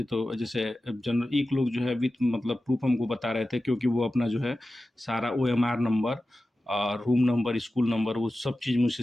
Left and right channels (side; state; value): both; normal; correlation 0.94